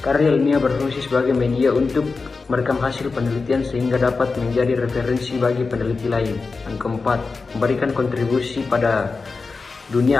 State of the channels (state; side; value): quieter; right; 4.3 dB